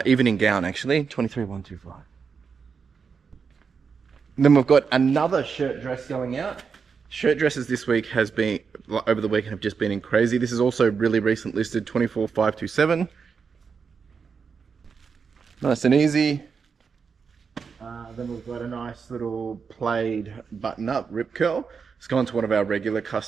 Evening gown, actually, 23,125. Then we've got another shirt dress going out. Shirt dresses this week over the weekend have just been in crazy. This is also really recent listed, 24,527. Nice and easy. Then we've got a nice little plaid button-up rip curl. It's gone to one of our regular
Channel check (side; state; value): left; quieter; 5.8 dB